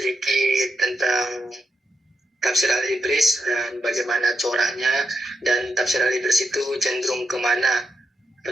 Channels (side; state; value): both; normal; correlation 0.83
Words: tentang tafsir Al-Ibris dan bagaimana coraknya, dan tafsir Al-Ibris itu cenderung kemana